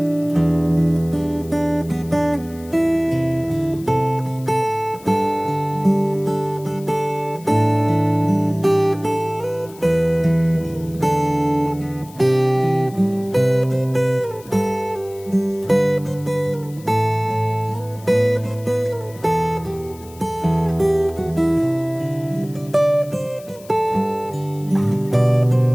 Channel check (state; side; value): noise; left; hiss, 23 dB below the sound